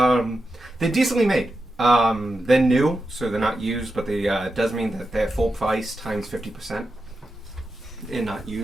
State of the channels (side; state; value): both; normal; correlation 0.89